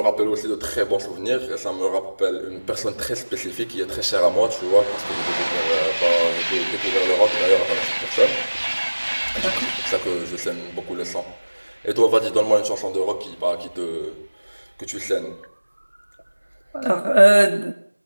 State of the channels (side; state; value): both; inverted; correlation -1.00